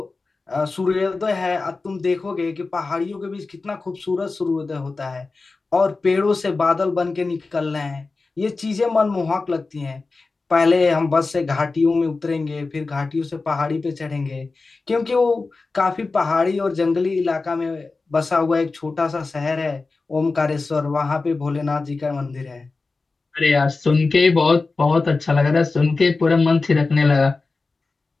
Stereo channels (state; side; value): quieter; right; 3.8 dB